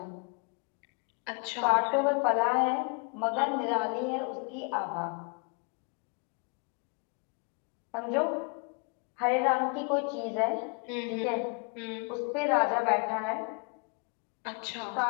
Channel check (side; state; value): right; quieter; 35.8 dB